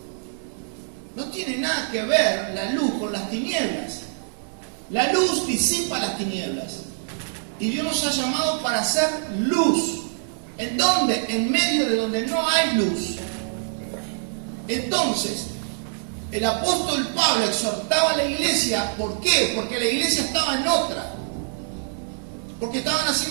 No tiene nada que ver la luz con las tinieblas. La luz disipa las tinieblas. Y Dios nos ha llamado para hacer luz. ¿En dónde? En medio de donde no hay luz. Entonces, el apóstol Pablo exhortaba a la iglesia. ¿Por qué? Porque la iglesia estaba en otra. Porque estaban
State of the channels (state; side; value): silent; left; digital silence